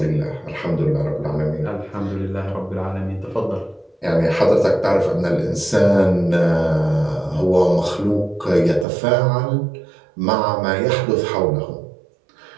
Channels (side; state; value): left; drops out; at 8.8 s